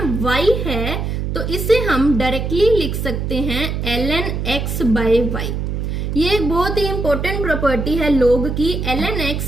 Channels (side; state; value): right; noise; hum, 2 dB below the sound